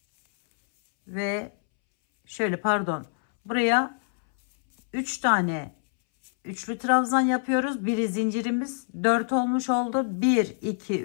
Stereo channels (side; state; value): right; silent; 61 dB below the other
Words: ve şöyle, pardon, buraya 3 tane üçlü trabzan yapıyoruz. Biri zincirimiz 4 olmuş oldu. 1 2